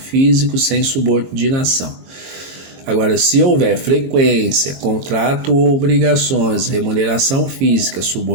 sem subordinação. Agora, se houver frequência, contrato ou obrigações, remuneração física,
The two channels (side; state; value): left; late; 22 ms